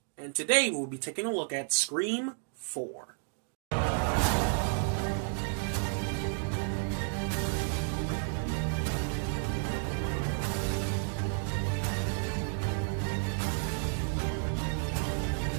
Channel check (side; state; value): left; silent; 57 dB below the other